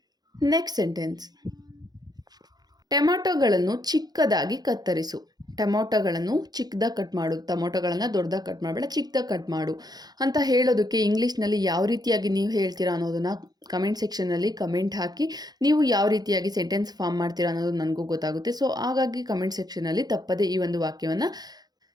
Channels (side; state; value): left; late; 0.19 ms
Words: Next sentence, ಟೊಮ್ಯಾಟೊಗಳನ್ನು ಚಿಕ್ಕದಾಗಿ ಕತ್ತರಿಸು. ಟೊಮೊಟೊಗಳನ್ನು ಚಿಕ್ಕದಾಗಿ ಕಟ್ ಮಾಡು. ಟೊಮೊಟೊಗಳನ್ನು ದೊಡ್ಡದಾಗಿ ಕಟ್ ಮಾಡಬೇಡ, ಚಿಕ್ಕದಾಗಿ ಕಟ್ ಮಾಡು ಅಂತ ಹೇಳೋದಕ್ಕೆ ಇಂಗ್ಲೀಷ್ನಲ್ಲಿ ಯಾವ ರೀತಿಯಾಗಿ ನೀವು ಹೇಳ್ತೀರಾ ಅನ್ನೋದನ್ನು ಕಮೆಂಟ್ ಸೆಕ್ಷನ್ನಲ್ಲಿ ಕಮೆಂಟ್ ಹಾಕಿ. ನೀವು ಯಾವ ರೀತಿಯಾಗಿ ಸೆಂಟೆನ್ಸ್ ಫಾರ್ಮ್ ಮಾಡ್ತೀರಾ ಅನ್ನೋದು ನನಗೂ ಗೊತ್ತಾಗುತ್ತೆ. ಸೊ ಹಾಗಾಗಿ ಕಮೆಂಟ್ ಸೆಕ್ಷನಲ್ಲಿ ತಪ್ಪದೆ ಈ ಒಂದು ವಾಕ್ಯವನ್ನು